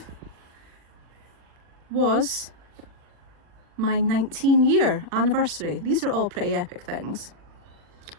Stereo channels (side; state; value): left; late; 40 ms